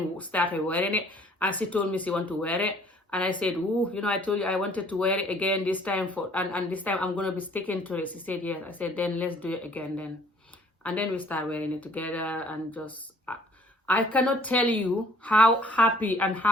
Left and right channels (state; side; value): normal; both; correlation 0.57